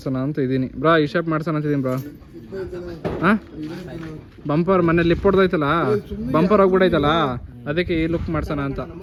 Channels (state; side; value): identical; both; correlation 1.00